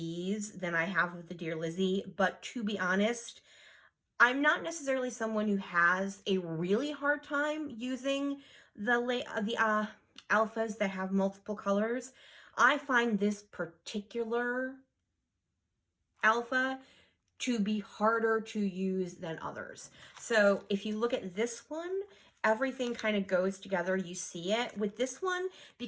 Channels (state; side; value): identical; both; correlation 1.00